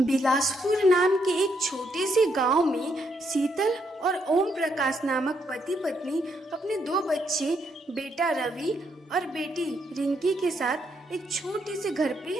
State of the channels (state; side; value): normal; both; correlation 0.76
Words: बिलासपुर नाम के एक छोटे से गांव में शीतल और ओम प्रकाश नामक पति पत्नी अपने 2 बच्चे बेटा रवि और बेटी रिंकी के साथ एक छोटे से घर पे